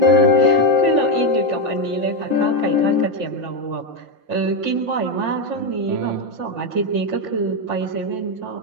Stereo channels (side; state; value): left; late; 5.9 ms